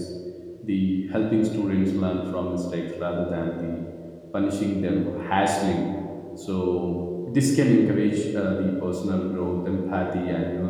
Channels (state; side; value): identical; both; correlation 1.00